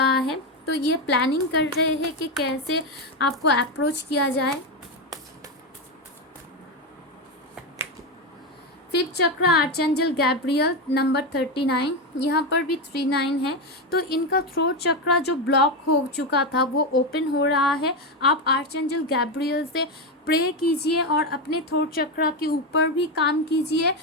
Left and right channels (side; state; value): both; normal; correlation 0.11